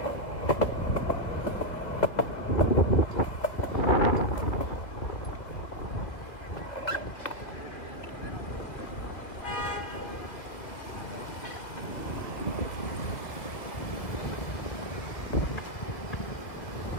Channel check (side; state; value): right; late; 2.3 ms